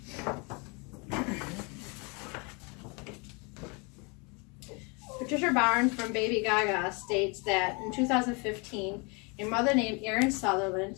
Patricia Barnes from Baby Gaga states that in 2015, a mother named Erin Sutherland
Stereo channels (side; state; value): right; quieter; 31.1 dB